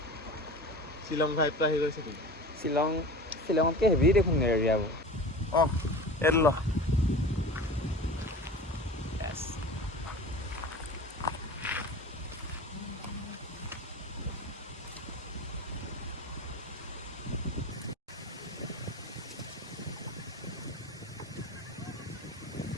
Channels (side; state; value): both; normal; correlation 0.35